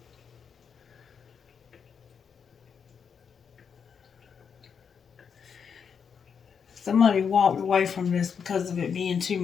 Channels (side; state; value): right; quieter; 6.7 dB